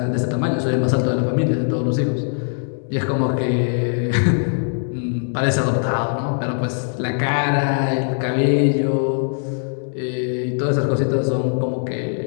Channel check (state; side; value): silent; right; 65 dB below the other